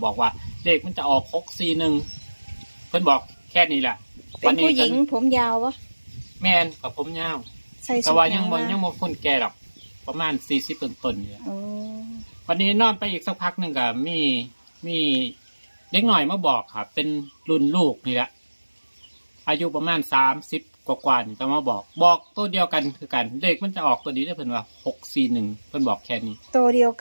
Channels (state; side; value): inverted; both; correlation -1.00